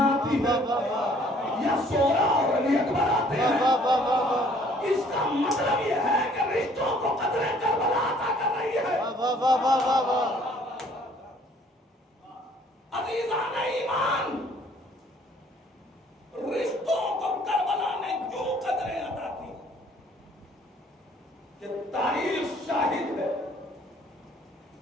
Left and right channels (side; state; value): both; normal; correlation 0.59